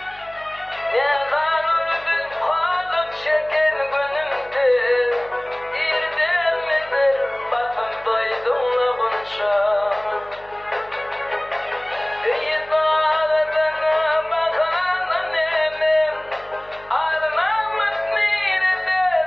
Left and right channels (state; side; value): noise; left; hum, 26 dB below the sound